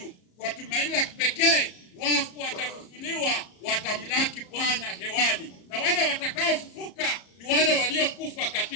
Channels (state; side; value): late; right; 34 ms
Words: kwa tumaini la kipekee, wafu watafufuliwa, watamlaki Bwana hewani. Na wale watakaofufuka ni wale waliokufa